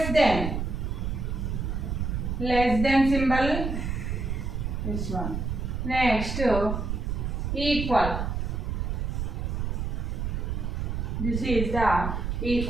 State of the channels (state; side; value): noise; right; rumble, 2 dB below the sound